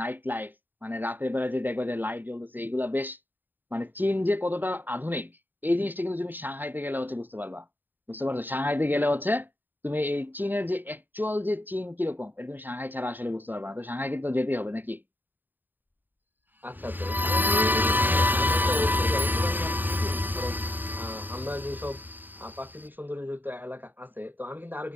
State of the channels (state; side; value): late; left; 0.091 ms